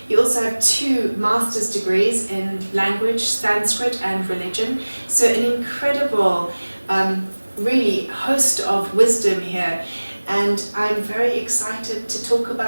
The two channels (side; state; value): both; inverted; correlation -1.00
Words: You also have 2 master's degrees in language, Sanskrit and religion. So an incredible, really host of wisdom here. And I'm very excited to talk